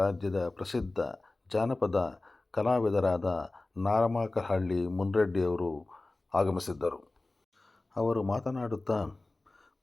ಪ್ರಸಿದ್ಧ ಜಾನಪದ ಕಲಾವಿದರಾದ ನಾರಮಾಕಹಳ್ಳಿ ಮುನ್ರೆಡ್ಡಿಯವರು ಆಗಮಿಸಿದ್ದರು. ಅವರು ಮಾತನಾಡುತ್ತಾ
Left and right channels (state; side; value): quieter; right; 3.0 dB